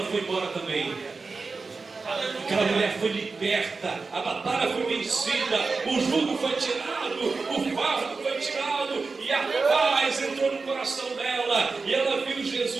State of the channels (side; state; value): left; quieter; 4.2 dB